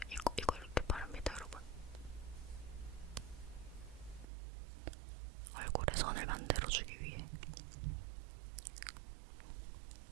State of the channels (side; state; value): left; drops out; at 4.2 s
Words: 이거 이렇게 바릅니다, 여러분. 얼굴에 선을 만들어주기 위해